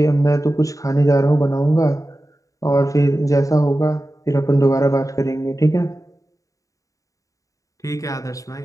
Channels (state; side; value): late; right; 0.16 ms